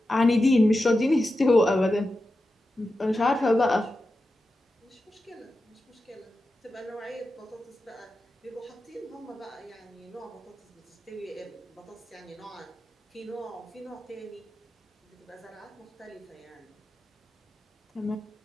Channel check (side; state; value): both; normal; correlation 0.91